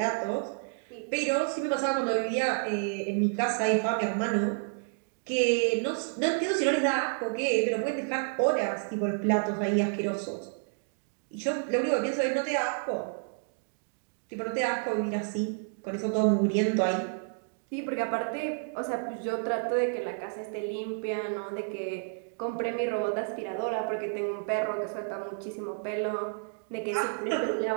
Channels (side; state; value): left; silent; digital silence